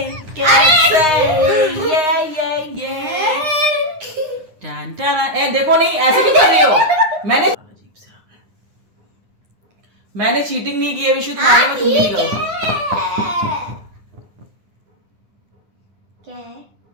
ये ए देखो, नहीं ऐसे क्यों कर रही हो? मैंने चीटिंग नहीं की है विशु, तुम्हारे में तुम नहीं करो। क्या है?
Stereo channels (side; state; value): left; late; 9.8 ms